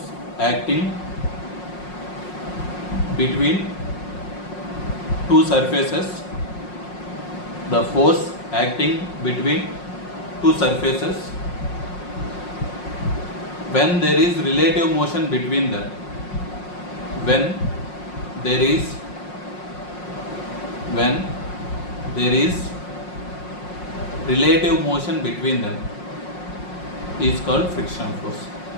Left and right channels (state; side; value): late; right; 5.5 ms